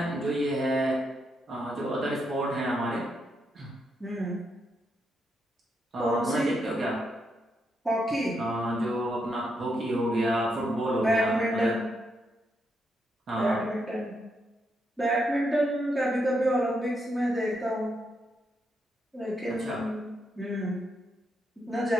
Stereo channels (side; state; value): both; normal; correlation 0.80